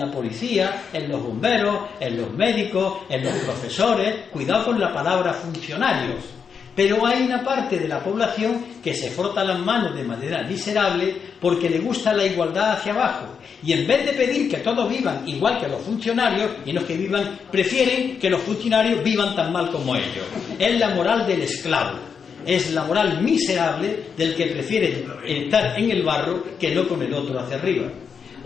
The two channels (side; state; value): right; quieter; 6.4 dB